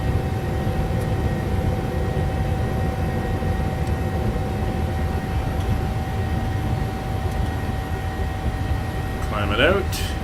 Climb it out.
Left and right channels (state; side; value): identical; both; correlation 1.00